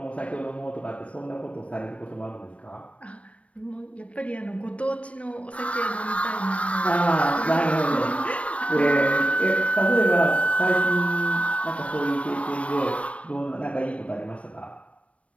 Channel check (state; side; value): late; right; 0.063 ms